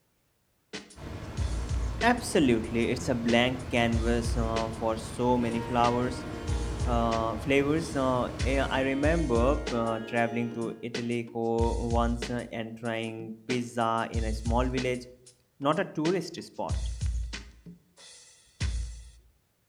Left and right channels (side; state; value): both; identical; correlation 1.00